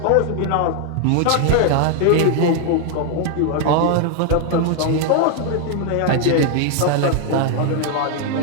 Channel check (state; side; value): different; both; correlation 0.00